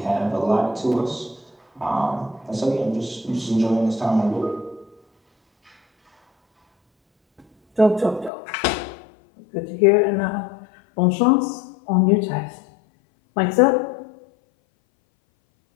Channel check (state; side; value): drops out; right; at 8.3 s